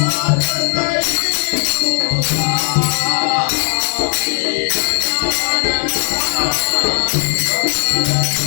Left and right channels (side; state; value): right; silent; digital silence